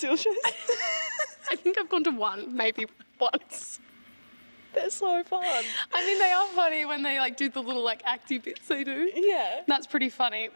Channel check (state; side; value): inverted; both; correlation -1.00